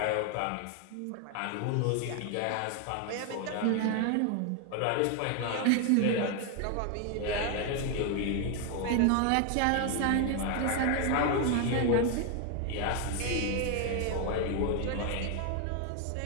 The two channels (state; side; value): different; both; correlation 0.01